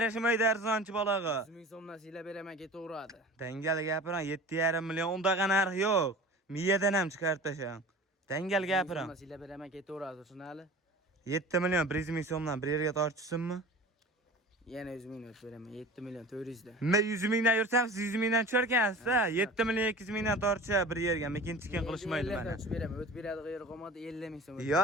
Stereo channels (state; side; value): normal; both; correlation 0.39